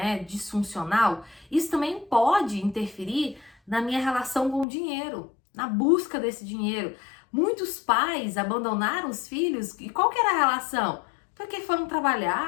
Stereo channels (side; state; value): right; drops out; at 4.7 s